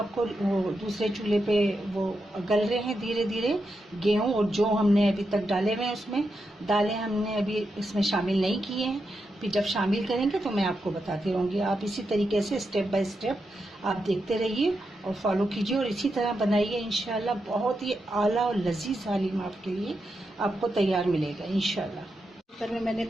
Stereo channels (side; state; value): both; normal; correlation 0.86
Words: वो दूसरे चूल्हे पे वो गल रहे हैं धीरे धीरे। गेहूं और जो हमने अभी तक डाले हुए हैं उसमें, दालें हमने अभी इसमें शामिल नहीं किए हैं। फिर जब शामिल करेंगे तो मैं आपको बताती रहूँगी। आप इसी तरीके से स्टेप बाय स्टेप आप देखते रहिए और फॉलो कीजिए और इसी तरह बनाइए। इंशाल्लाह बहुत ही आला और लजीज हलीम आपके लिए आपको तैयार मिलेगा इंशाल्लाह। कुकर में मैंने